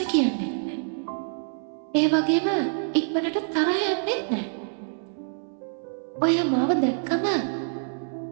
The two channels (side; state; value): left; silent; 61 dB below the other